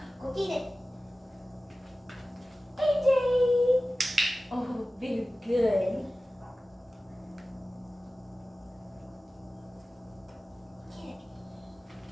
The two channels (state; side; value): normal; both; correlation 0.96